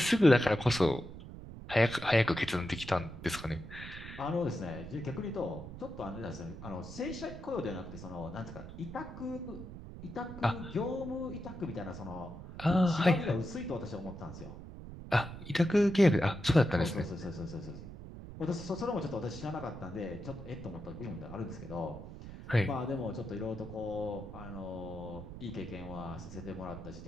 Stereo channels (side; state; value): right; noise; rumble, 12 dB below the sound